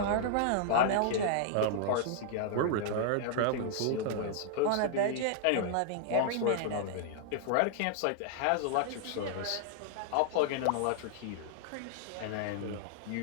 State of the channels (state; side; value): different; both; correlation -0.01